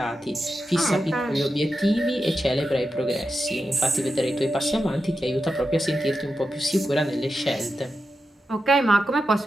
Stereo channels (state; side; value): normal; both; correlation 0.89